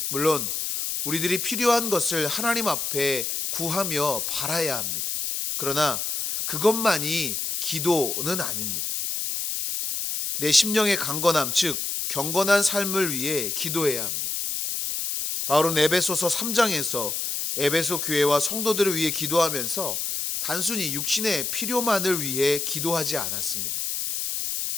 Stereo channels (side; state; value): left; noise; hiss, 2 dB below the sound